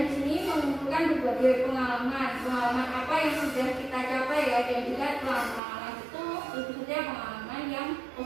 di sini mengumpulkan berbagai pengalaman apa yang sudah kita capai ya, dan juga pengalaman itu tentu saja pengalaman yang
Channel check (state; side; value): drops out; left; at 5.6 s